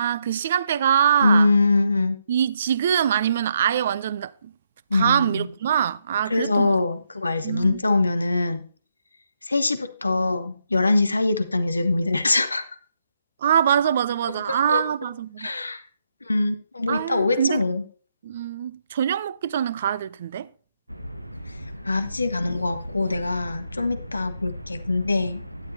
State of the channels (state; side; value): inverted; both; correlation -0.79